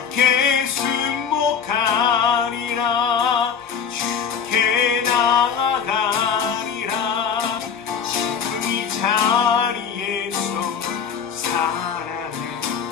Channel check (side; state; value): right; quieter; 7.1 dB